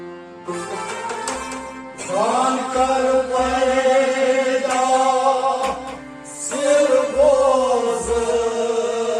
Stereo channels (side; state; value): both; identical; correlation 1.00